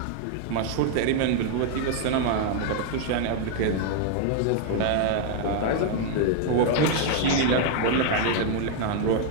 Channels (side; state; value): both; different; correlation 0.00